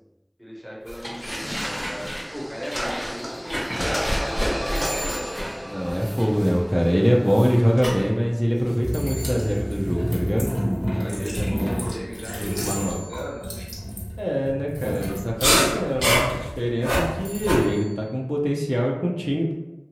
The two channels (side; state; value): both; identical; correlation 1.00